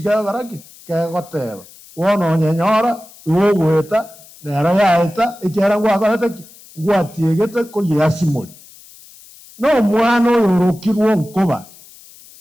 baraki kegoteba wono nyenyora uweta nera yaeta ikiara ngwakorete ngwatiegete ko yasimori no mwana yorokirwo nkoba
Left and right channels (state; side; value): noise; left; hiss, 22 dB below the sound